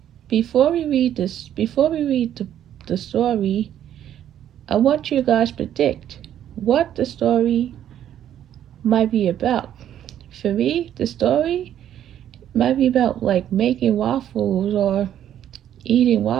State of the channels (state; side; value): quieter; left; 10.7 dB